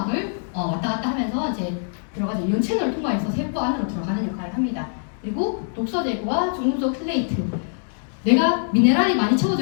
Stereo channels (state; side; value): silent; right; 63 dB below the other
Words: 왔다 갔다 하면서 이제 들어가죠. 이온 채널을 통과해서 세포 안으로 들어가는 역할을 합니다. 그리고 독소 제거와 중금속 킬레이트. 내가 미네랄이 많이